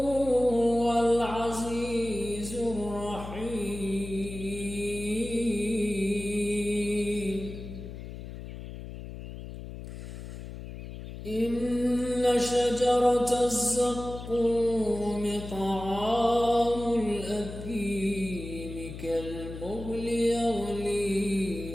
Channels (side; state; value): left; noise; hum, 10 dB below the sound